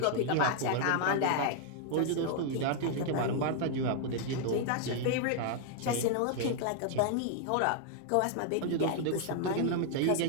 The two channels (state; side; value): different; both; correlation 0.00